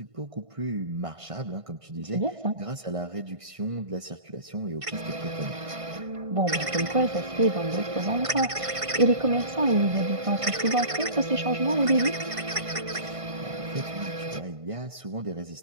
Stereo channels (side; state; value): left; late; 1.5 ms